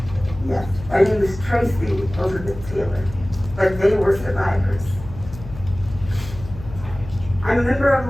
Yes, my name is Tracy Elizabeth Taylor, but they were survivors. I'm a member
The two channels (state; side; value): noise; left; hum, 14 dB below the sound